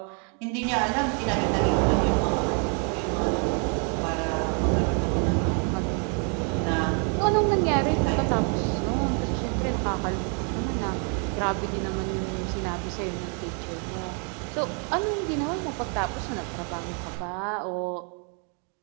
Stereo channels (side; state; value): left; quieter; 38.7 dB